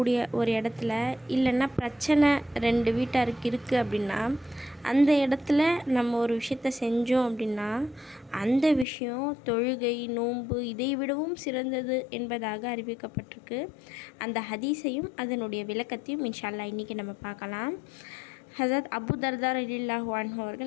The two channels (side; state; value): right; drops out; at 8.8 s